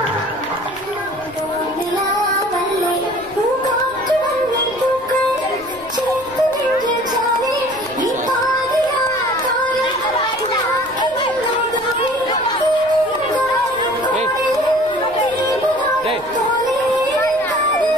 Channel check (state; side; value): noise; left; rumble, 24 dB below the sound